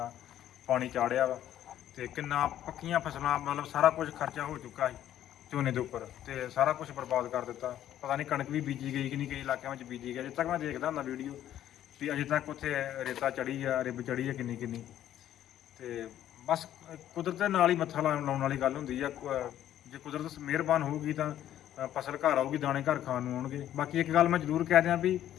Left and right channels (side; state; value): right; quieter; 11.7 dB